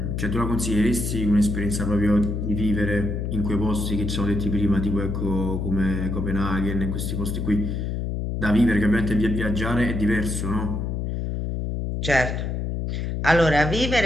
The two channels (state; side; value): noise; left; hum, 2 dB below the sound